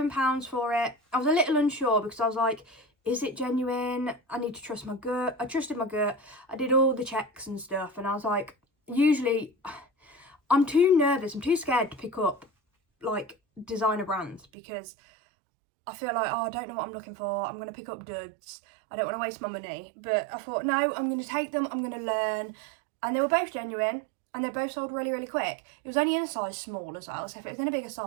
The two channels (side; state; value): left; drops out; at 14.5 s